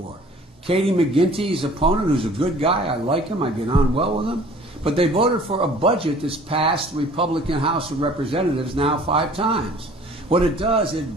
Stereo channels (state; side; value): normal; both; correlation 0.50